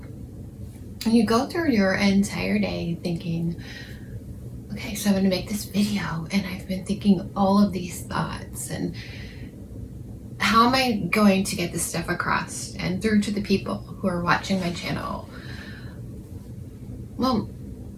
you go through your entire day thinking, okay, so I'm going to make this video, and I've been thinking all of these thoughts, and how am I going to get this stuff across and through to the people who are watching my channel? Well,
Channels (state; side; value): identical; both; correlation 1.00